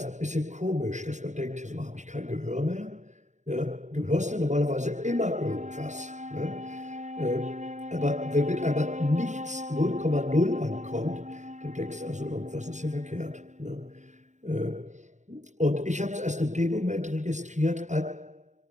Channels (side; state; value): left; late; 0.34 ms